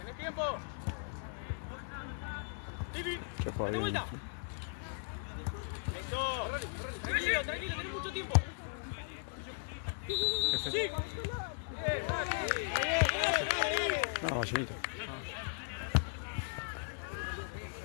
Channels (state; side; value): silent; right; 53 dB below the other